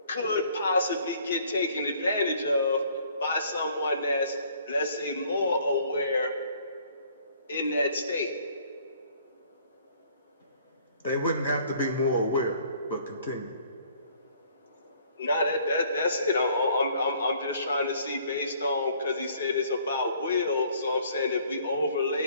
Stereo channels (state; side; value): inverted; both; correlation -0.59